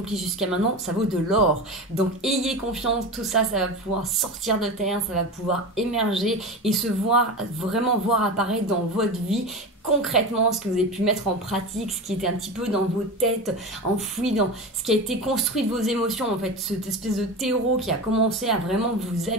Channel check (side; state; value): both; normal; correlation 0.26